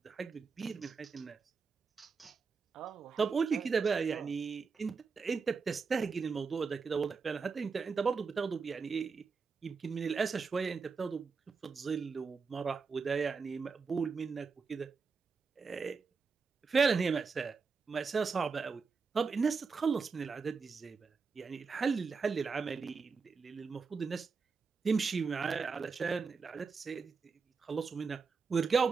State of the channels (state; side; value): quieter; left; 5.0 dB